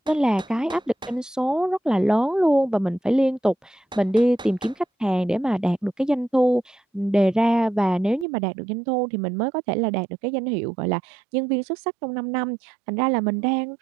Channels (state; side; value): drops out; left; at 8.2 s